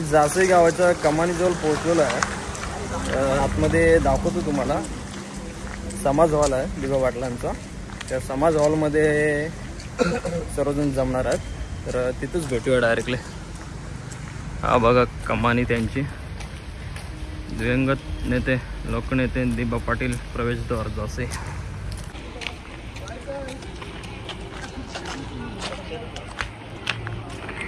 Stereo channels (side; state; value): both; identical; correlation 1.00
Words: जासे गावाच्या कमानीजवळ पोहोचलेलो आहे. आतमध्ये दाखवतो तुम्हाला. समाज हॉल आहे दिबा पाटलांचा. त्या समाज हॉलमध्ये सर्वजण जमणार आहेत, तर तिथंच भेटूया डायरेक्टली. हा बघा कमानी त्यांची. दिवंगत नेते लोकनेते दिबा पाटील प्रवेशद्वार जासे.